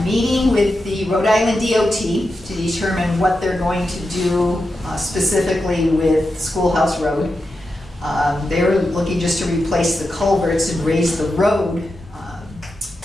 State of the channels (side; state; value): both; normal; correlation 0.89